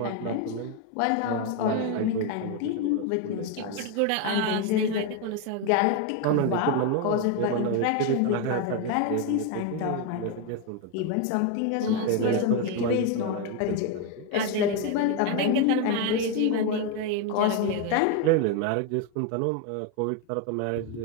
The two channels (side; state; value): both; different; correlation 0.02